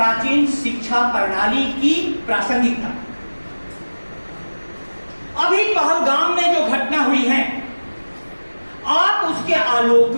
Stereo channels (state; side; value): inverted; both; correlation -1.00